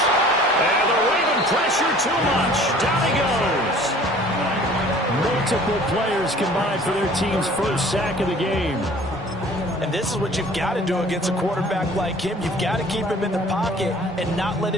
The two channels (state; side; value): normal; both; correlation 0.50